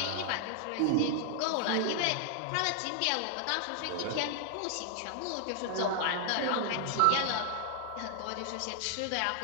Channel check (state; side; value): different; both; correlation 0.00